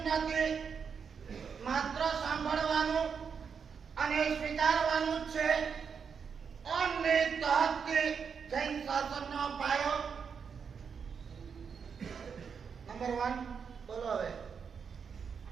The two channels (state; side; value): quieter; left; 6.4 dB